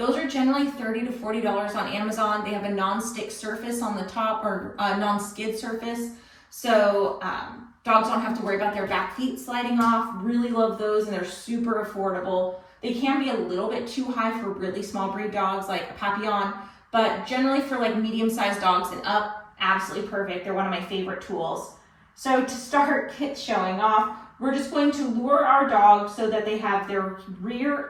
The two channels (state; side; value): identical; both; correlation 1.00